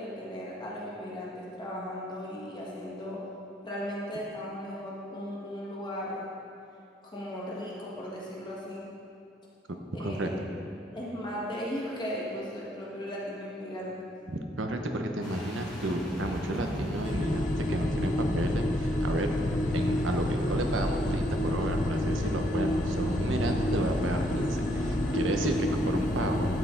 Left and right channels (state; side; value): normal; both; correlation 0.70